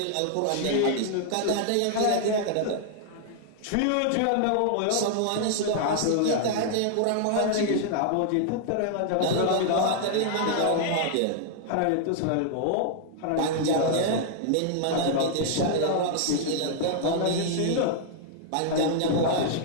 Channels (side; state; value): both; different; correlation -0.01